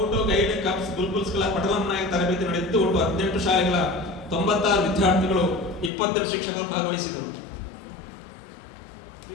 ಗೈಡ್ ಕಪ್ಸ್ ಬುಲ್ಬುಲ್ಸ್ಗಳ ಪಟಲಂ ನಾಯಕ ತರಬೇತಿ ನಡೆದಿದ್ದು ಒಟ್ಟು 18 ಶಾಲೆಗಳ 96 ವಿದ್ಯಾರ್ಥಿಗಳು 22 ಶಿಕ್ಷಕರು ಭಾಗವಹಿಸಿದರು.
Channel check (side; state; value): right; drops out; at 5.9 s